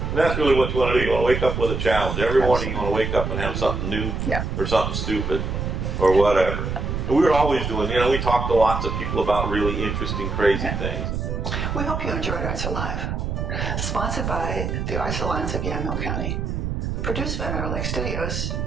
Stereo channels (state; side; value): noise; right; rumble, 2 dB below the sound